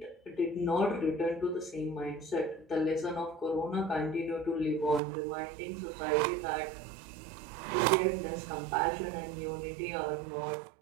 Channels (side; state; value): left; drops out; at 5.0 s